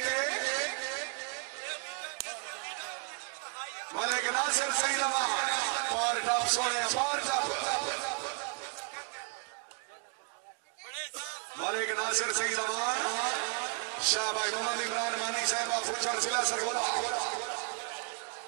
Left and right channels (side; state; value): left; quieter; 37.3 dB